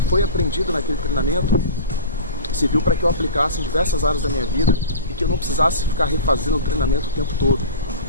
aprendido naquele treinamento serviu para que eu aplicasse em diversas áreas da minha vida e que eu não precisasse ficar refazendo o treinamento o tempo todo.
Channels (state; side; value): inverted; both; correlation -0.34